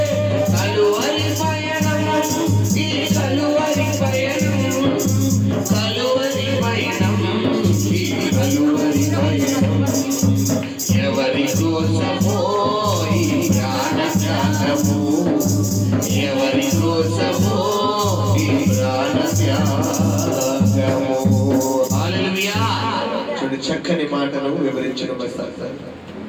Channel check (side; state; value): both; identical; correlation 1.00